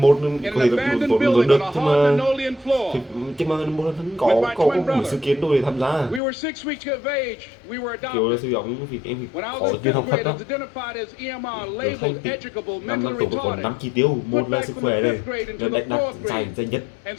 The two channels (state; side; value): drops out; right; at 6.2 s